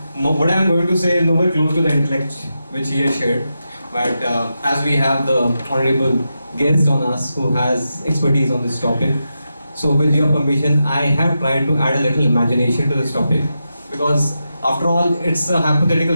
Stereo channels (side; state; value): both; inverted; correlation -0.88